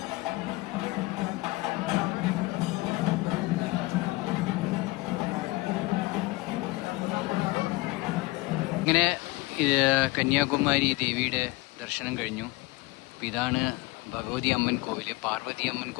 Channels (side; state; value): right; quieter; 22.1 dB